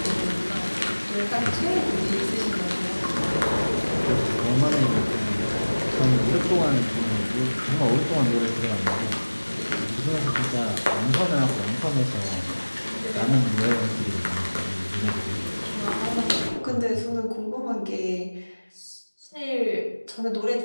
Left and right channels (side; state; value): both; inverted; correlation -1.00